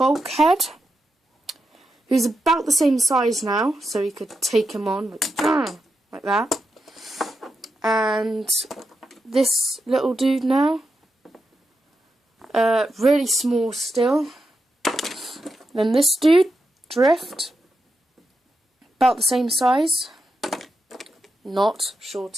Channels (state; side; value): normal; both; correlation 0.86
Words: who's about the same size now, so you could take him on like that. And this little dude now, really small still. Then this dude, Drift, about the same size, not